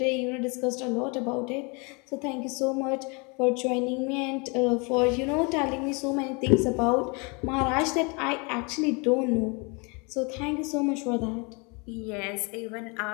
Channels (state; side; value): quieter; right; 31.2 dB